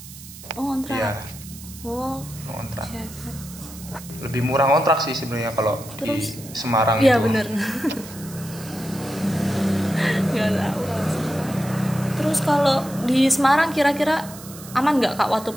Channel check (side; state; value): right; noise; hiss, 16 dB below the sound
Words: Oh kontrak. Iya, Oh, ngontrak. siap. Lebih murah ngontrak sih sebenarnya kalau di Terus, Semarang iya itu. bener. Nggak tahu kalau Semarang. Terus kalau di Semarang kira-kira aman nggak Kak waktu